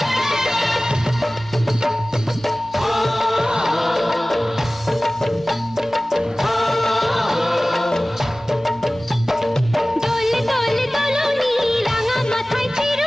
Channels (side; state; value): both; normal; correlation 0.98